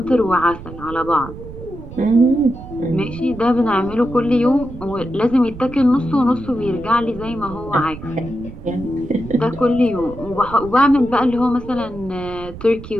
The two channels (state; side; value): noise; right; rumble, 14 dB below the sound